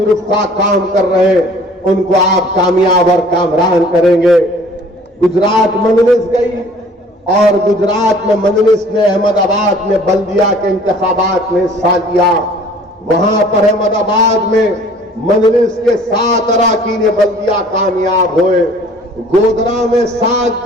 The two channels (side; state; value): both; normal; correlation 0.52